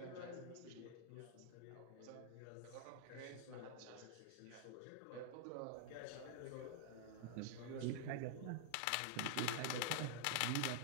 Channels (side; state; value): both; different; correlation -0.01